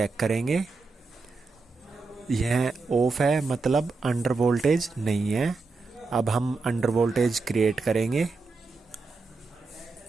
करेंगे। यह ऑफ है, मतलब अंडर वोल्टेज नहीं है। अब हम अंडर वोल्टेज क्रिएट करेंगे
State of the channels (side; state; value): left; quieter; 4.0 dB